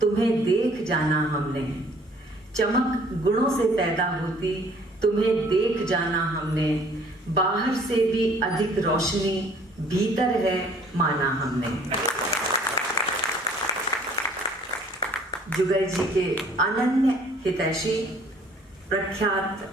देख जाना हमने, चमक गुणों से पैदा होती, तुम्हें देख जाना हमने, बाहर से भी अधिक रोशनी भीतर है माना हमने। जुगल जी के अनन्य हितैषी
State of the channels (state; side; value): normal; both; correlation 0.56